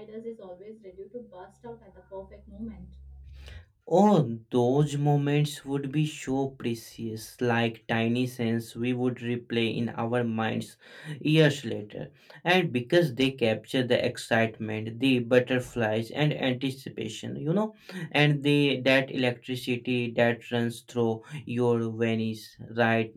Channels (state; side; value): identical; both; correlation 1.00